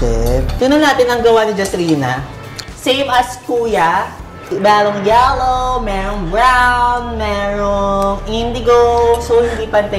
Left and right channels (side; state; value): both; identical; correlation 1.00